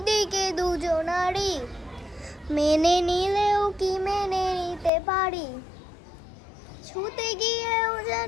দুজনারই, মেনে নিলেও কি মেনে নিতে পারি? ছুতে গিয়েও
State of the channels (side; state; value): right; drops out; at 4.9 s